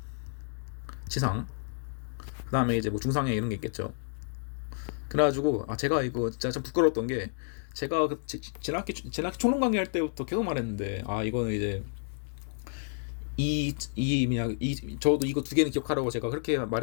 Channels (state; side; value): silent; right; digital silence